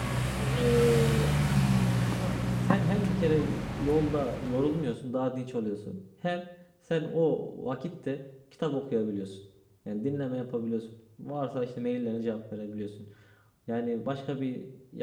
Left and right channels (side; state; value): both; identical; correlation 1.00